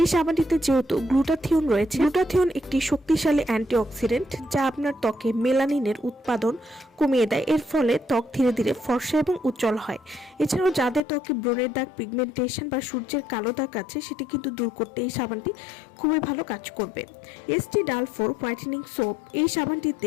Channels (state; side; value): drops out; right; at 11.0 s